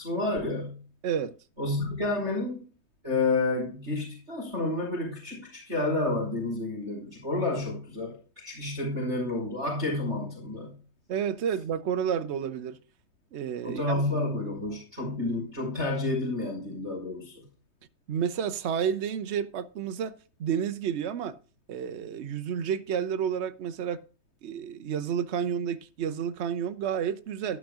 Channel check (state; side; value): late; left; 3.2 ms